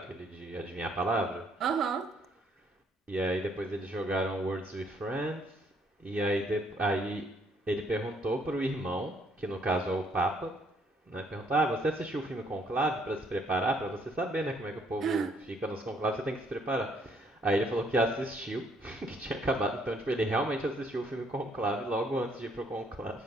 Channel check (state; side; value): normal; both; correlation 0.67